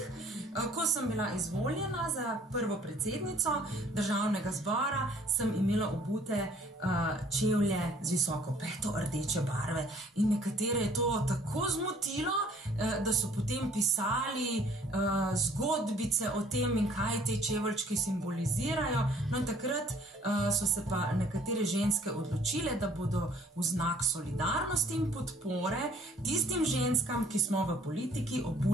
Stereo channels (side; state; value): both; normal; correlation 0.57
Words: Ko sem bila izvoljena za prvo predsednico Državnega zbora, sem imela obute čevlje z visoko peto rdeče barve. In nekatere je to tako zmotilo, da so potem pisali zgodbice o tem in kaj te čeveljčki simbolizirajo. No in takrat so se pa nekatere ženske odločile, da bodo v znak solidarnosti in podpore tistim ženskam, ki smo v politiki,